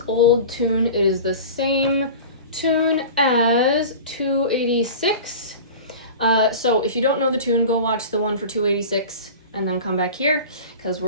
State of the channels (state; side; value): inverted; both; correlation -0.35